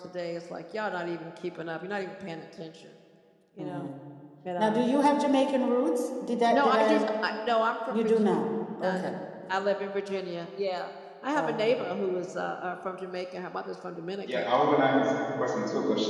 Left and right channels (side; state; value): both; identical; correlation 1.00